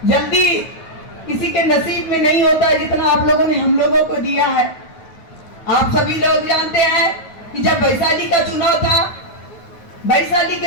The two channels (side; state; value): right; late; 9.3 ms